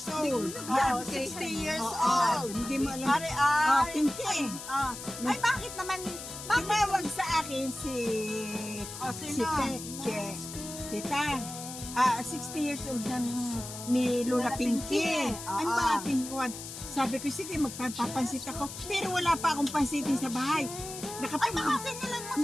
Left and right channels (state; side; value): noise; left; hiss, 10 dB below the sound